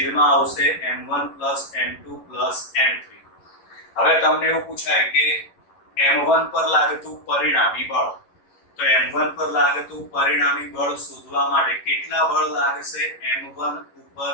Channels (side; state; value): right; late; 10 ms